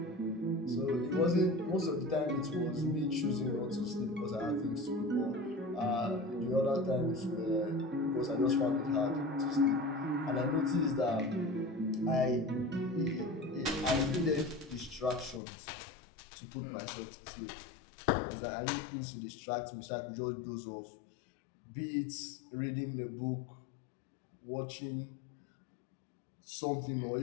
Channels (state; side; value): drops out; right; at 15.4 s